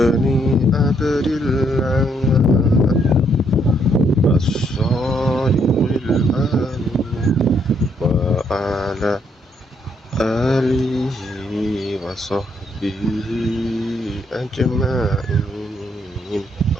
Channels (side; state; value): both; normal; correlation 0.72